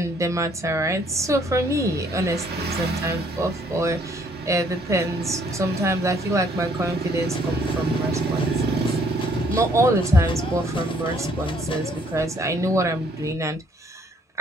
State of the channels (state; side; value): normal; both; correlation 0.64